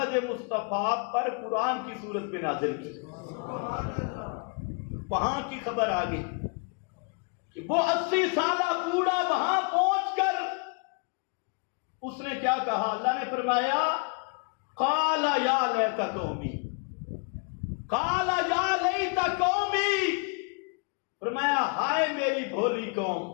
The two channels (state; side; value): quieter; right; 33.1 dB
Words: مصطفیٰ پر قرآن کی صورت میں نازل کی۔ وہاں کی خبر آ گئی کہ وہ 80 سالہ بوڑھا وہاں پہنچ کر اس نے کیا کہا؟ اللہ نے فرمایا قال یا لیت قومی، قال یا لیت قومی، فرمایا ہائے میری بھولی قوم،